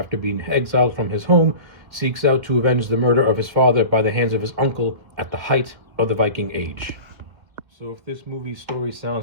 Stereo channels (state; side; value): late; left; 2.0 ms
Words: being exiled from his home, seeks out to avenge the murder of his father by the hands of his uncle at the height of the Viking Age. So if this movie's story